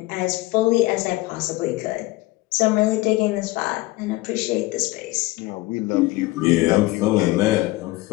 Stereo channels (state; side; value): quieter; right; 19.8 dB